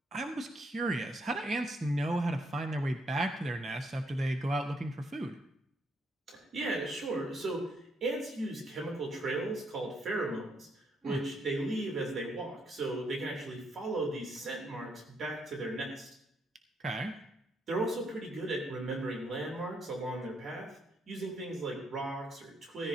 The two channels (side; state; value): both; normal; correlation 0.74